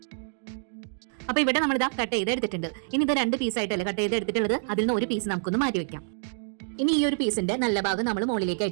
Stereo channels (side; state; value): left; silent; digital silence